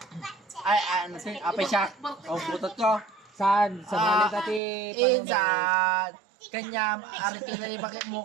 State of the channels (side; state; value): left; drops out; at 4.6 s